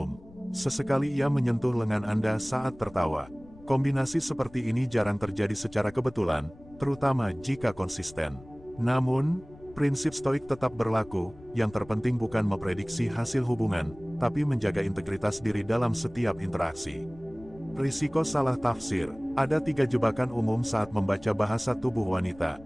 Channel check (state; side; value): noise; left; rumble, 22 dB below the sound